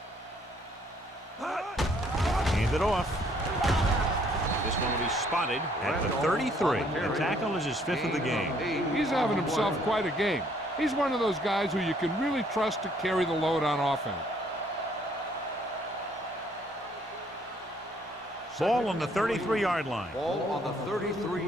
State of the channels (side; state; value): both; normal; correlation 0.65